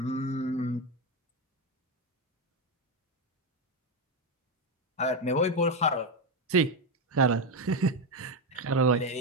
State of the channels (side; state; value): both; normal; correlation 0.09